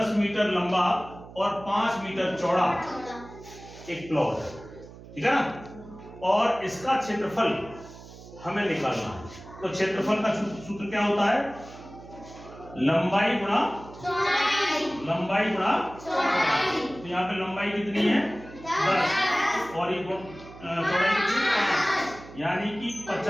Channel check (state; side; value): noise; right; hum, 17 dB below the sound